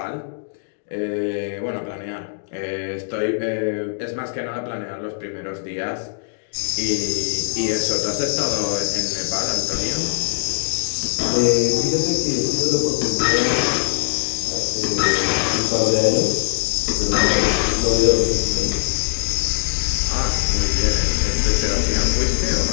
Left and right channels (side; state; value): right; silent; digital silence